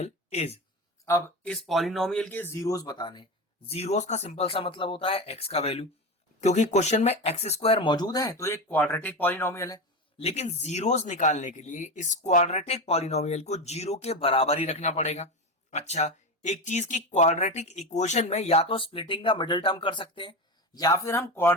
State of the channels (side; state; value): both; normal; correlation 0.20